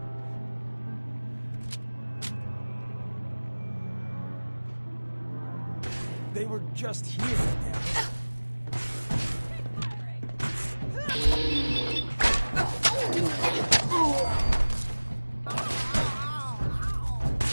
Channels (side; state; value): both; inverted; correlation -1.00